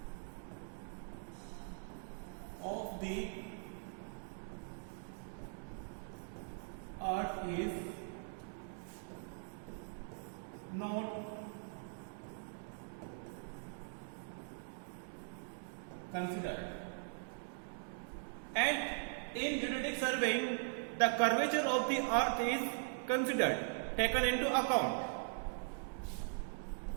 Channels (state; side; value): silent; left; digital silence